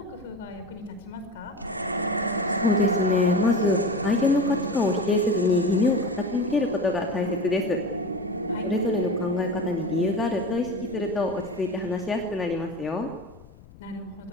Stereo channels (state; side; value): noise; left; rumble, 23 dB below the sound